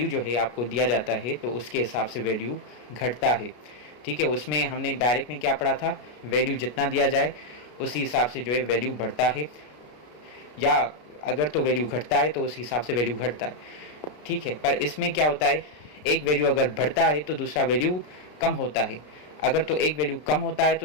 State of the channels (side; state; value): right; late; 33 ms